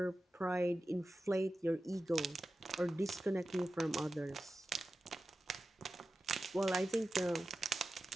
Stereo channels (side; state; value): both; normal; correlation 0.93